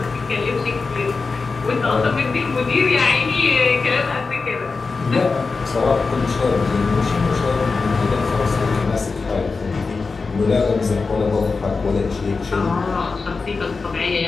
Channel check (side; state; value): right; quieter; 4.3 dB